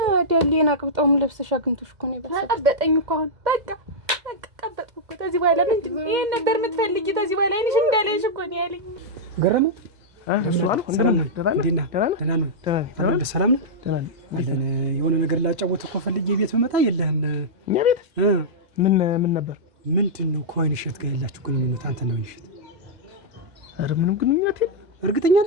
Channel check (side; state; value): left; late; 2.0 ms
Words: ዳሌን አቅብጣውም ለብሰሽ አግኝቶሽ እኮ ነው ይበሳል። ቀበጠኝ እኮ አሁን በቃ ቀበጥኩ እኮ። ከዚህ በኋላ ምንድን ነው ይሄን ነበር የምትፈልጊ? ከዚህ በኋላ አይንሽ እንዳለሽ እኮ ነው ያለኝ። ገረመ የሆነ ነገር ላጫወት እኮ ፈልጌ ቤት ብመጣ የለህም። እኛ ቤት ምን ነበር? ምንድን ነው ከወይን እሸት ጋር ያላችሁ ግንኙነት? አንተ ነው እሸት? ኧረ ምንም ግንኙነት የለም። እርግጠኛ